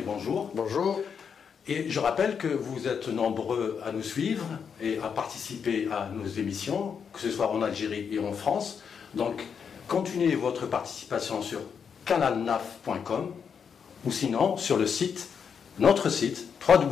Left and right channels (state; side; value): quieter; right; 6.8 dB